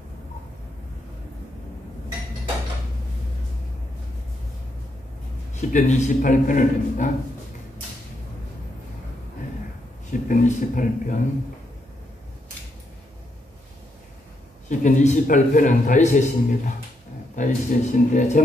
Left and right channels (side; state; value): both; normal; correlation 0.79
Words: 시편 28편을 냅니다. 시편 28편. 시편 28편은 다윗의 시입니다. 다윗의 시인데